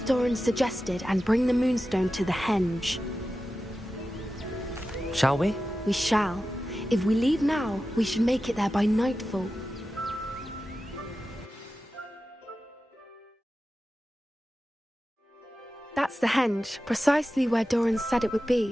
suggested and bring the Moonstone to the henge. Shall we? We shall. If we leave now, we should make it there by nightfall. That's the henge, precisely where Doran said it would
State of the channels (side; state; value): both; normal; correlation 0.93